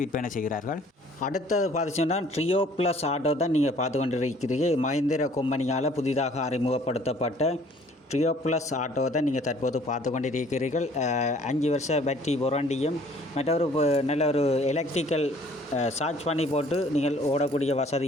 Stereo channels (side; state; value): both; normal; correlation 0.56